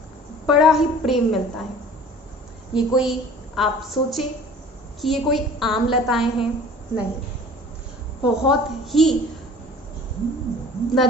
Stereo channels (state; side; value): normal; both; correlation 0.46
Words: बड़ा ही प्रेम मिलता है। ये कोई आप सोचे कि ये कोई आम लताएं हैं, नहीं, बहुत ही न